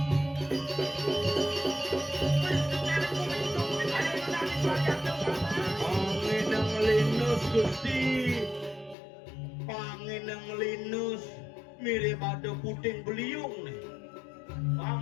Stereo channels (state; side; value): drops out; right; at 9.0 s